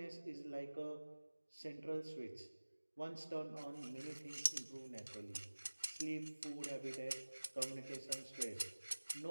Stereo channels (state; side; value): inverted; both; correlation -1.00